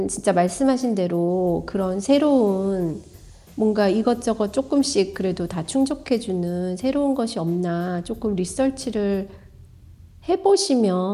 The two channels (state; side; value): identical; both; correlation 1.00